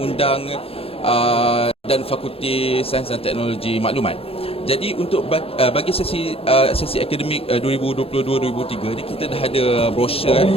dan fakulti sains dan teknologi maklumat. Jadi untuk bagi sesi akademik 2022-2023 ni kita dah ada brosur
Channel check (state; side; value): late; right; 0.28 ms